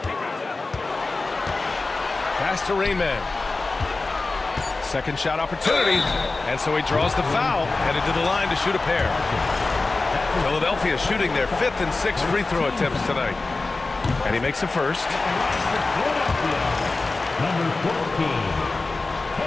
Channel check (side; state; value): right; quieter; 3.5 dB